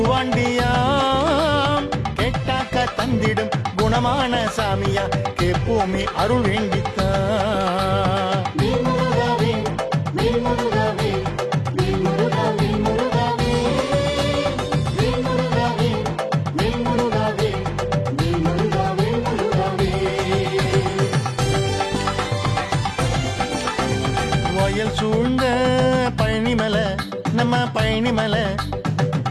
கேட்டாக்க தந்திடும் குணமான சாமியா கேப்போமே அருள் வேண்டித்தான் மேல்முருகாவே மேல்முருகாவே மேல்முருகாவே முருகாவே மேல்முருகாவே மேல்முருகாவே மேல்முருகாவே முருகாவே வயல் சூழ்ந்த பழனிமலை நம்ம பழனிமலை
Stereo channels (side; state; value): both; identical; correlation 1.00